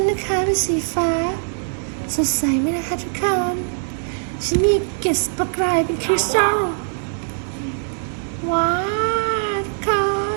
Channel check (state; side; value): silent; left; digital silence